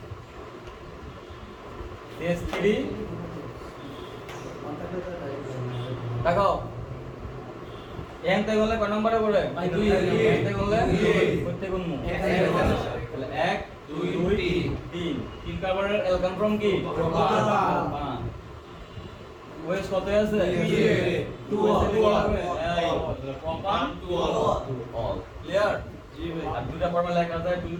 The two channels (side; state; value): both; identical; correlation 1.00